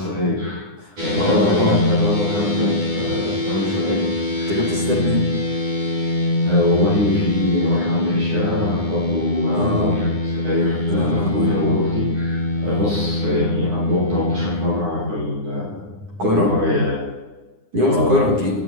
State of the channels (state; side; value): late; left; 9.8 ms